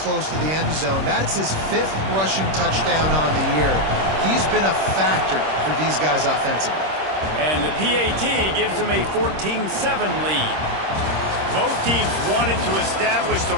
to the end zone. That's his 5th rushing touchdown on the year. He's been a factor for these guys offensively. And the PAT gives them a 14-7 lead. Both teams wanted to establish the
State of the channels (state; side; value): late; left; 26 ms